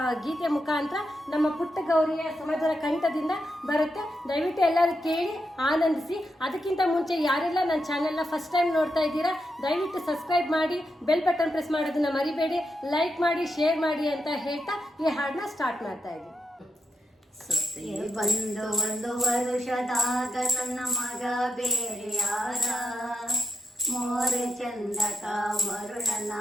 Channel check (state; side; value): normal; both; correlation 0.83